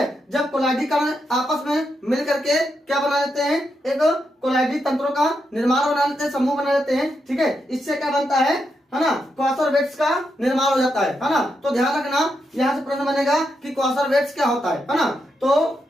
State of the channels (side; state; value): both; normal; correlation 0.83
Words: जब कोलाइडी कण आपस में मिल करके क्या बना लेते हैं? एक कोलाइडी तंत्रों का निर्माण बना लेते हैं, समूह बना लेते हैं, ठीक है। इससे क्या बनता है ना, क्वासरवेट्स का निर्माण हो जाता है ना। तो ध्यान रखना, यहाँ से प्रश्न बनेगा कि क्वासरवेट्स क्या होता है ना। तो